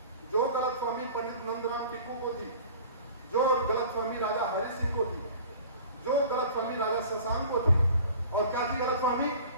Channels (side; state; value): both; inverted; correlation -0.44